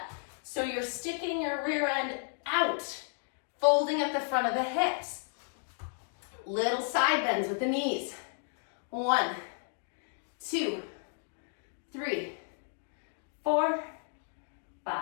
So you're sticking your rear end out, folding at the front of the hips. Little side bends with the knees. 1, 2, 3, 4,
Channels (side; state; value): right; silent; 56 dB below the other